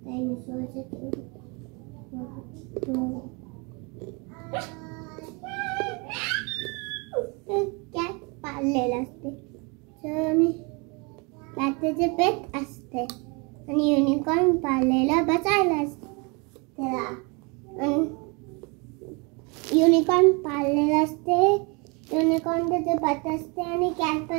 डायनोसॉरचे कॅट पाळलेलं असते आणि त्याचे पेट असते आणि युनिकॉर्न पाळलेला बसायला असते त्याला युनिकॉर्न पाळलेला असते युनिकॉर्न त्याचे पेट असते आणि कॅट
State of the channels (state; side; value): quieter; left; 30.7 dB